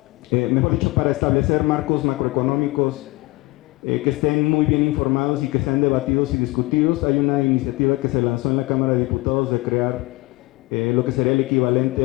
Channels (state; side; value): quieter; right; 22.3 dB